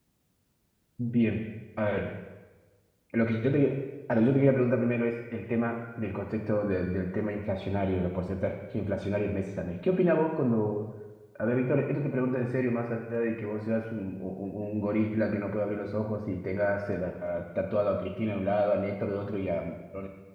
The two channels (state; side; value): identical; both; correlation 1.00